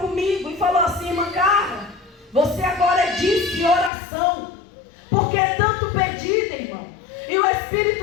comigo e falou assim: irmã Carla, você agora é disque oração, porque é tanto pedido, irmão. E o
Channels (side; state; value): right; drops out; at 3.9 s